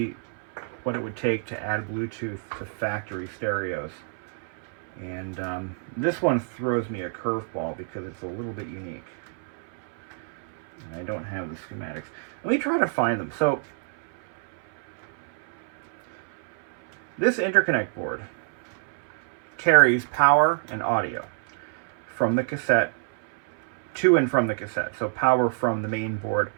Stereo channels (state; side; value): silent; left; 59 dB below the other